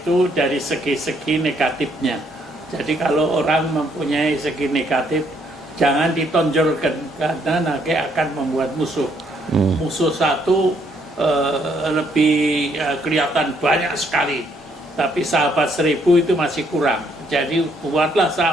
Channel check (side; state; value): both; normal; correlation 0.70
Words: dari segi-segi negatifnya. Jadi kalau orang mempunyai segi negatif, jangan ditonjolkan karena nanti akan membuat musuh. Musuh satu lebih kelihatan banyak sekali, tapi sahabat 1000 itu masih kurang. Jadi buatlah